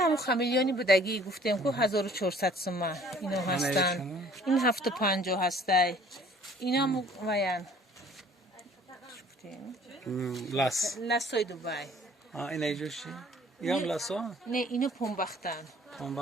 ҳамун хамелеони будагӣ гуфтем ку 1400 сума ино ҳастан ин 750 ҳастай инам ваян лассои Дубай ина иҷо чӣ ям ласо не ино помбахтан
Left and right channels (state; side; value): normal; both; correlation 0.54